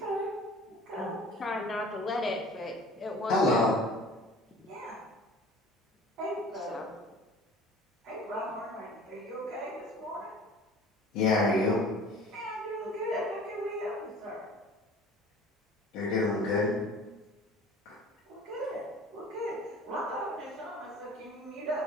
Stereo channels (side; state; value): both; normal; correlation 0.45